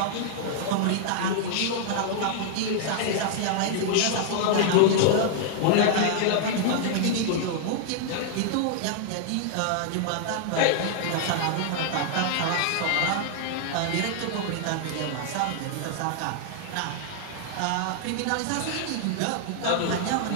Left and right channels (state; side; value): different; both; correlation -0.01